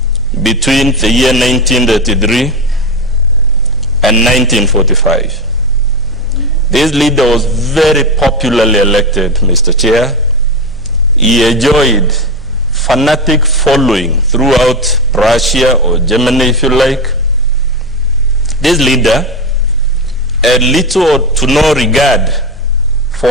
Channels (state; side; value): normal; both; correlation 0.16